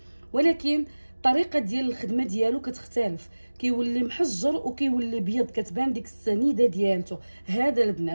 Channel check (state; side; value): inverted; both; correlation -1.00